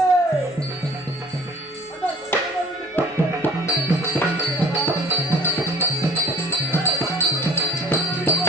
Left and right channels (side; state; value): both; normal; correlation 0.49